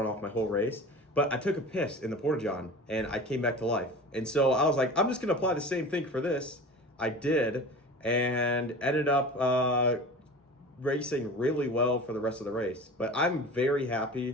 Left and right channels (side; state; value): both; normal; correlation 0.36